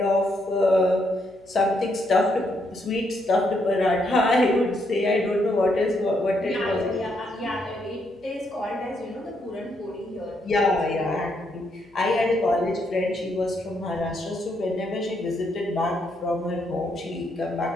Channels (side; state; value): left; noise; hum, 30 dB below the sound